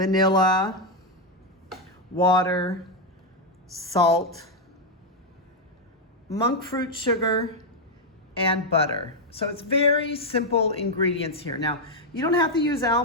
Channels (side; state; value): both; normal; correlation 0.02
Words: water, salt, monk fruit sugar, and butter. So it's very simple ingredients here. Now, you don't have to use